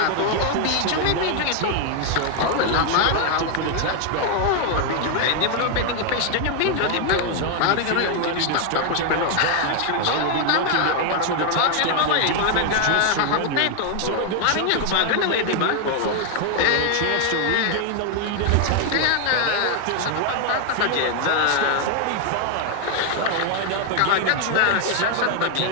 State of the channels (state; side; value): different; both; correlation 0.00